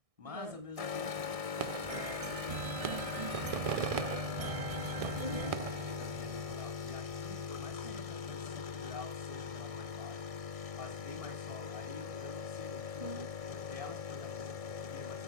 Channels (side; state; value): left; late; 1.6 ms